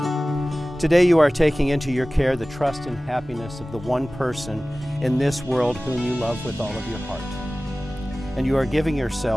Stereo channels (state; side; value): normal; both; correlation 0.97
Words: Today you are taking into your care the trust and happiness of the one person in this world whom you love with all of your heart. And you are giving